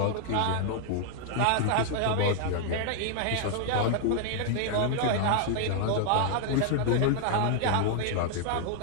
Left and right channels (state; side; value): different; both; correlation -0.01